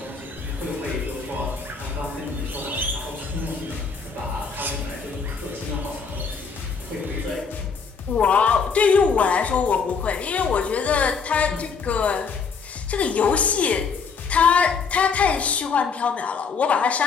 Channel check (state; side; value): quieter; right; 5.4 dB